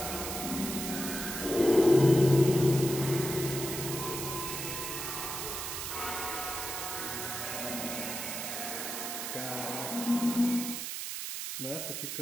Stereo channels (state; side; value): noise; right; hiss, 5 dB below the sound